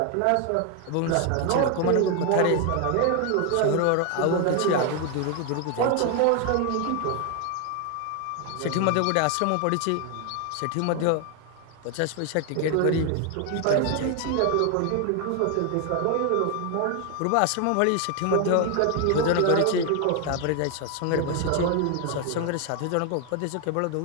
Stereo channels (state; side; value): different; both; correlation 0.01